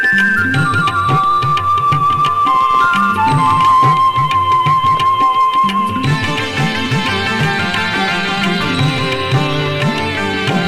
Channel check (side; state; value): both; identical; correlation 1.00